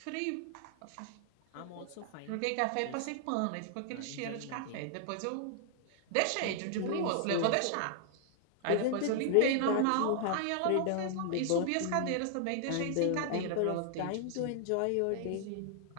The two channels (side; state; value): both; different; correlation 0.00